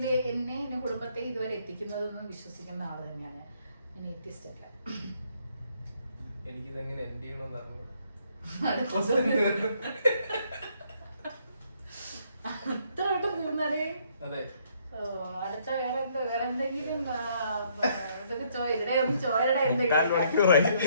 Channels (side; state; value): both; inverted; correlation -0.68